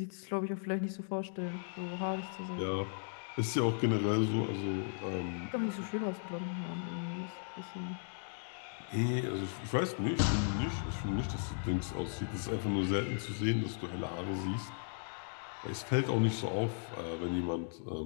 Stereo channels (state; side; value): silent; right; digital silence